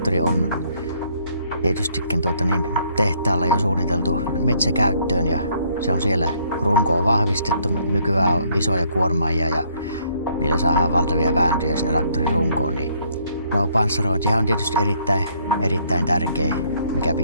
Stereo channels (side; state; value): both; inverted; correlation -0.66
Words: on tietystikin tehtaalla jo suunniteltu metsäkäyttöön ja se on siellä runkoon vahvistettu. Nykyään on isoja kuormaajia ja niillä saadaan valtavia vääntöjä sinne traktorin runkoon. Niin panssarointihan on tietysti erittäin tärkeä, mikä